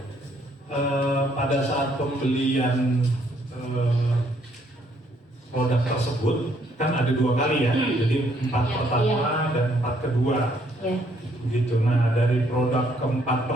Pada saat pembelian produk tersebut kan ada 2 kali ya, jadi 4 pertama dan 4 kedua. Begitu. Nah, dari produk keempat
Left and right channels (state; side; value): normal; both; correlation 0.68